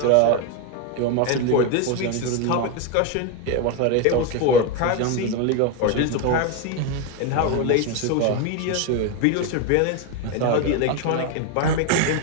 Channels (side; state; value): both; different; correlation 0.02